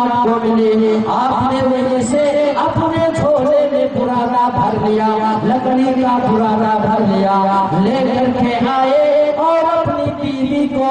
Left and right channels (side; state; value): both; identical; correlation 1.00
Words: کو ملی، آپ نے وہیں سے اپنے جھولے میں پرانا بھر لیا، لکڑی کا پرانا بھر لیا، لے کر کے آئے اور اپنی بیوی